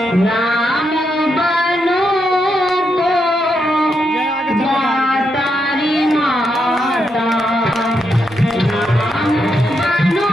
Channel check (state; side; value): normal; both; correlation 0.81